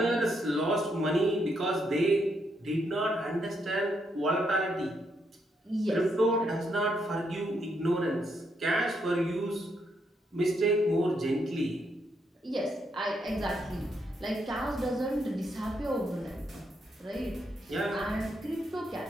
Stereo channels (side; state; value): both; normal; correlation 0.77